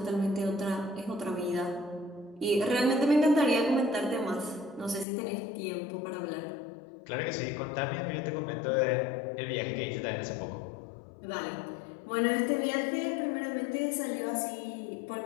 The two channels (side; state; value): right; drops out; at 5.1 s